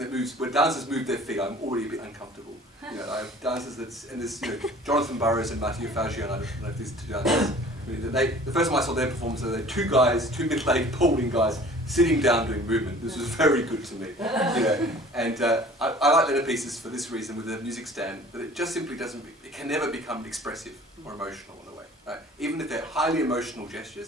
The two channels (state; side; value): normal; both; correlation 0.48